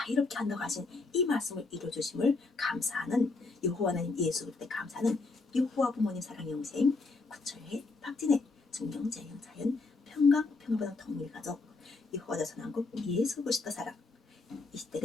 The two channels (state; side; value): quieter; right; 3.8 dB